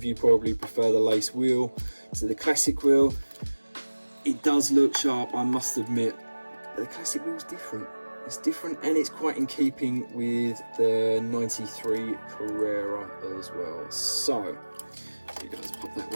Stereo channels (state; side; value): inverted; both; correlation -1.00